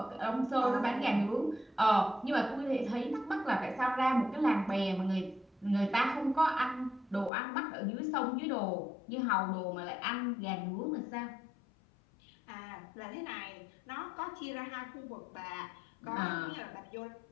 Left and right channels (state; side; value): drops out; right; at 7.3 s